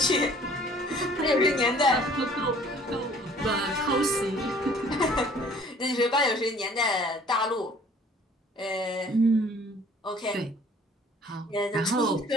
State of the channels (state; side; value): normal; both; correlation 0.54